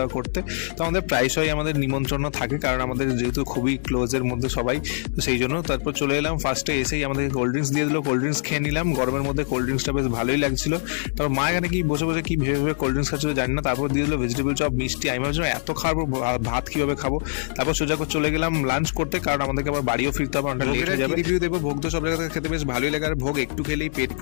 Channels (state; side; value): silent; right; digital silence